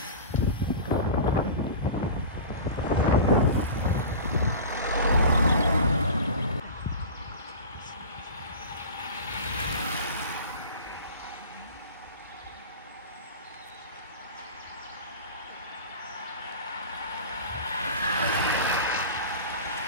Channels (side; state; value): both; inverted; correlation -0.33